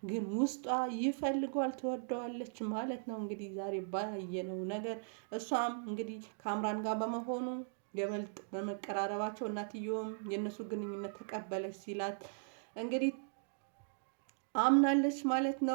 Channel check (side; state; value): left; silent; digital silence